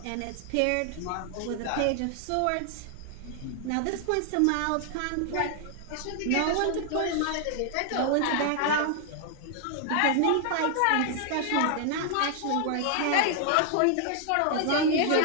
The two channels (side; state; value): both; different; correlation 0.00